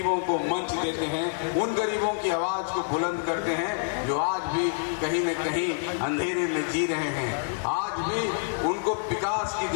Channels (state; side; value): silent; right; digital silence